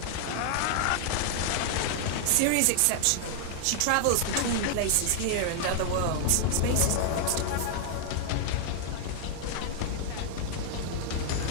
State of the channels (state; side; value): different; both; correlation 0.00